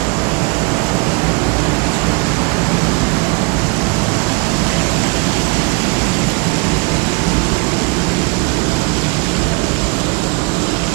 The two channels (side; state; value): left; quieter; 30.5 dB